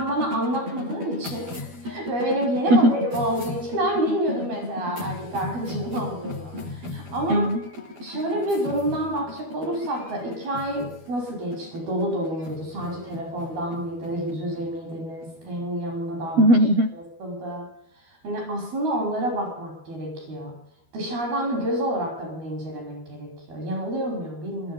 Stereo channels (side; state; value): left; late; 12 ms